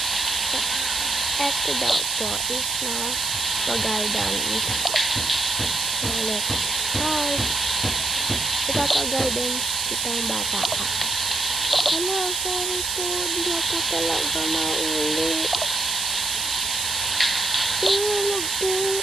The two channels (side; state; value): right; noise; hiss, 1 dB below the sound